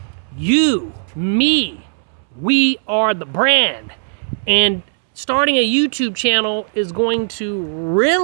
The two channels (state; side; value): silent; left; 68 dB below the other